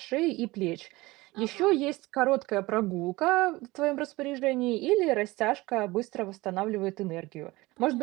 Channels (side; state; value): left; quieter; 20.7 dB